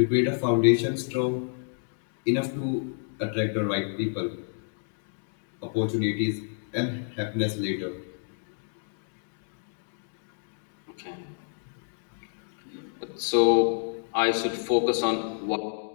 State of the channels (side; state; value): right; silent; digital silence